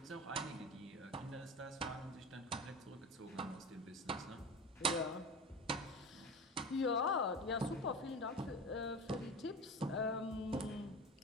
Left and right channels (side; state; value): both; normal; correlation 0.30